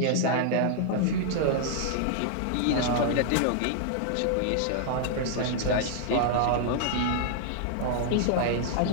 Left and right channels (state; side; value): different; both; correlation -0.01